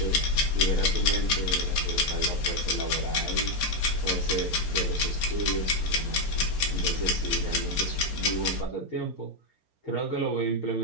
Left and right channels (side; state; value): right; late; 4.3 ms